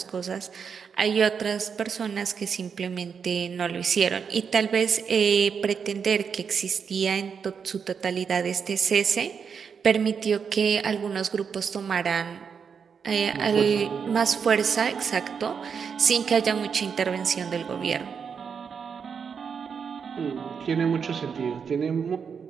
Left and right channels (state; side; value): quieter; left; 6.5 dB